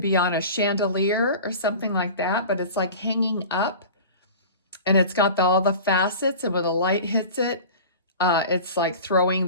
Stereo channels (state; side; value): inverted; both; correlation -0.37